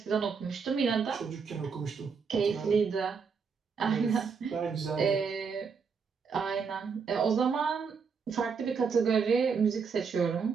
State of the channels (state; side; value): quieter; left; 5.6 dB